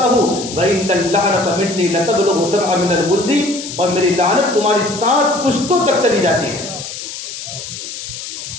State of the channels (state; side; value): noise; left; hiss, 9 dB below the sound